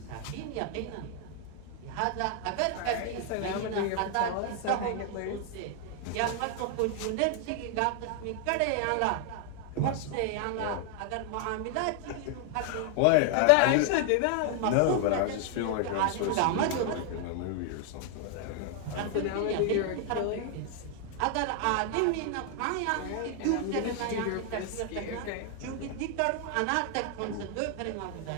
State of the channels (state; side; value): different; both; correlation 0.00